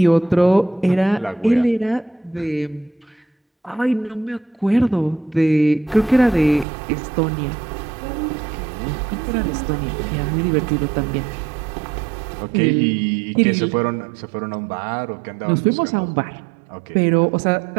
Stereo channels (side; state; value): left; drops out; at 6.7 s